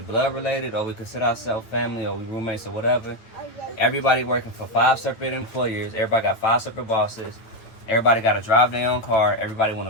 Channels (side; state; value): right; late; 9.0 ms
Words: related or we consider ourselves family or we roommates or whatever. Everybody working for 5 separate employers. Everybody got 5 separate bosses. Everybody got to drive their own car. Everybody want